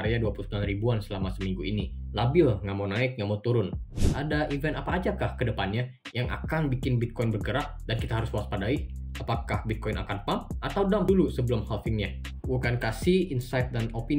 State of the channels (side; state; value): both; identical; correlation 1.00